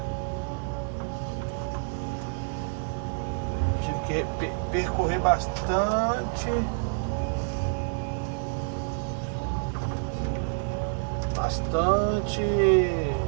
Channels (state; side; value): silent; left; 59 dB below the other